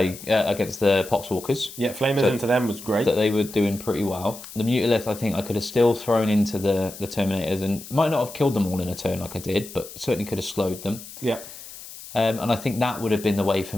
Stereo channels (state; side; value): noise; left; hiss, 15 dB below the sound